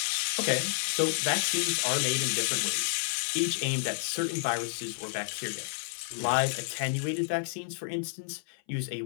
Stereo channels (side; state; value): right; silent; 58 dB below the other